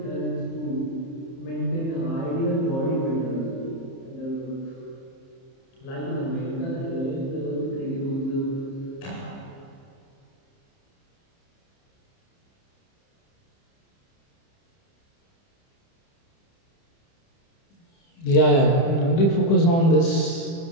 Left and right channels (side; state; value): right; late; 30 ms